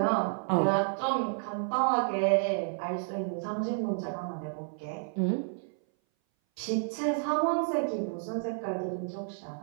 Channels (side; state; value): left; silent; 57 dB below the other